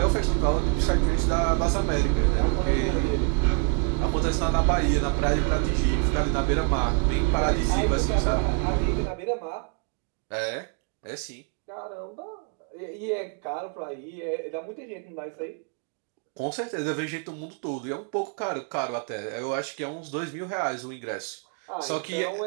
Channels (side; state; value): left; quieter; 34.8 dB